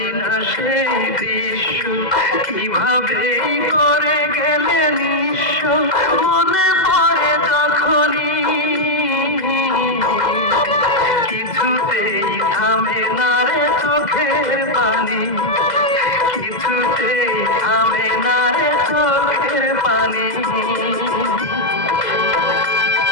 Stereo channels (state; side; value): late; right; 2.0 ms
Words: না সেই দৃশ্য, কিভাবে করে গেলে নিঃস্ব। মনে পড়ে যখনই কিছুতেই থামে না রে চোখের পানি, কিছুতেই থামে না রে চোখের পানি।